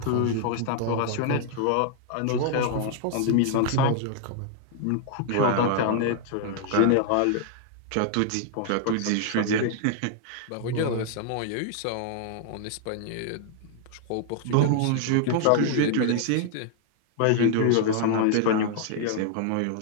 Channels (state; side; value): different; both; correlation 0.00